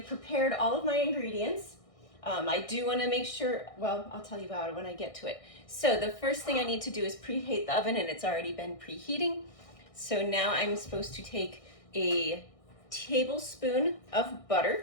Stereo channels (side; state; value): right; late; 1.6 ms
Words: prepared all of my ingredients. I do want to make sure, well, I'll tell you about it when I get to it. So the first thing I need to do is preheat the oven, and it's already been preheating. So now I'm supposed to take a tablespoon of